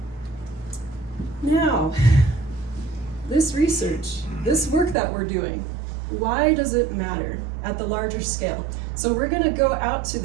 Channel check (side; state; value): left; drops out; at 5.0 s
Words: Now, this research, this work that we're doing, why does it matter at the larger scale? So we're gonna go out to